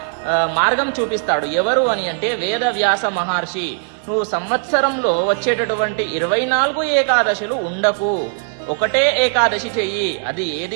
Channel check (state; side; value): silent; left; digital silence